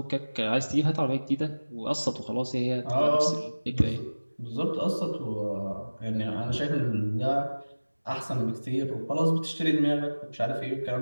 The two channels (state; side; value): inverted; both; correlation -1.00